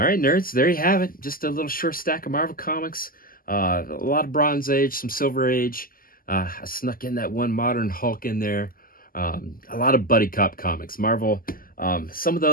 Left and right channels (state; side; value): late; right; 0.42 ms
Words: right, nerds, there you have it. Just a little short stack of Marvel Comics. A lot of Bronze Age, some Silver Age. I snuck in that one Modern Hulk in there. A lot of buddy cop comics. Marvel, some of